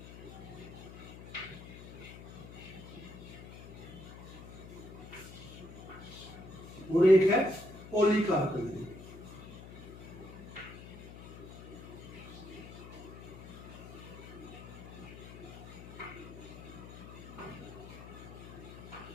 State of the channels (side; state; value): left; noise; hum, 13 dB below the sound